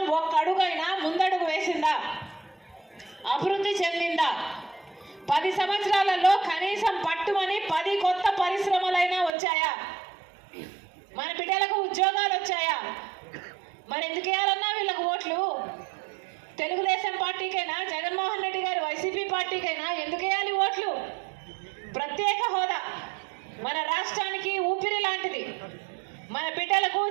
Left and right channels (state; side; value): drops out; left; at 9.3 s